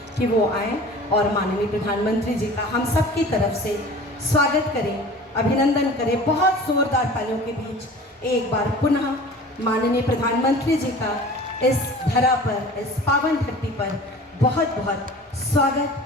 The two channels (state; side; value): normal; both; correlation 0.42